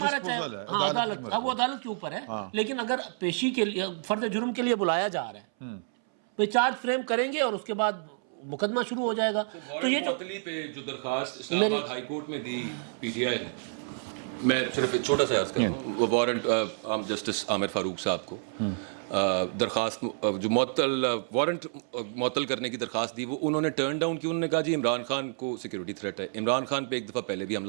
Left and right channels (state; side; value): silent; left; 59 dB below the other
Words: رچا ہے, ہاں عدالت, اب وہ عدالت کے اوپر ہے. لیکن اگر پیشی کے لیے فرد جرم کے لیے بلایا جا رہا ہے, وہ چارج فریم کریں گے اور اس کے بعد مقدمہ شروع ہو جائے گا. تو یہ معطلی پہ جو درخواست اسلام آباد ہائی کورٹ میں دی پی ٹی آئی نے, میں صرف ایک چھوٹا سا عرض کروں, وہ وارنٹ جسٹس عامر فاروق صاحب کو درخواست جو وارنٹ معطل کرنے کی درخواست دی, وہ انہوں نے ٹرن ڈاؤن کی. انہوں نے کہا جی عمران خان کو سیکورٹی تھریٹ ہے, عمران خان پہ ایک دفعہ پہلے بھی